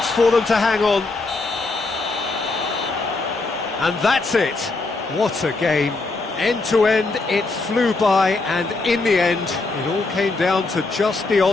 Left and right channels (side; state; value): right; quieter; 3.5 dB